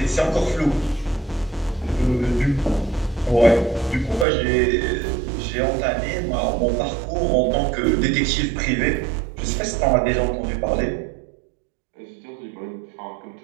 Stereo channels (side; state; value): left; drops out; at 4.2 s